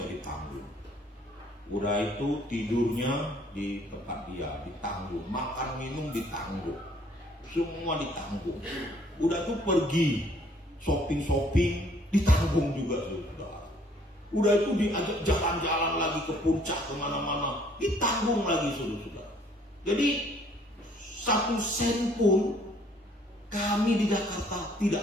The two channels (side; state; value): both; normal; correlation 0.61